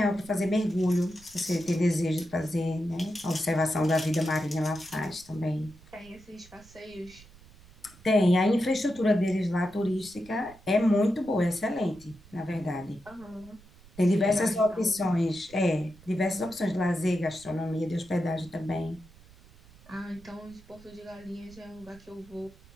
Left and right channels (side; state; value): right; noise; rumble, 24 dB below the sound